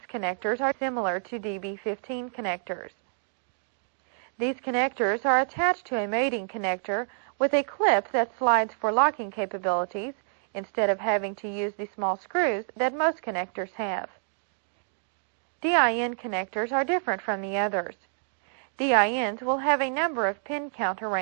connectors are similar to DB15 connectors. These connectors are attached to a mating connector with a clip that slides for locking capabilities instead of having to use the small screws that most connectors have. DIN connectors are different from the others. DINs will have a number of pin count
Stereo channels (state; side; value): silent; left; digital silence